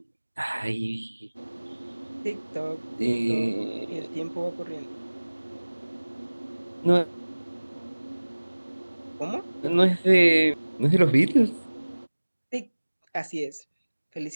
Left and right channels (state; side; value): inverted; both; correlation -1.00